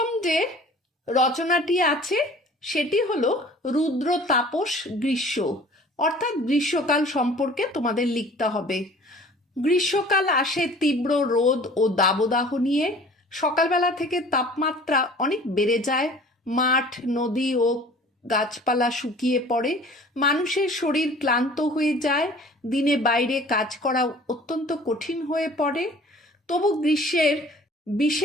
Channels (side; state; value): both; normal; correlation 0.48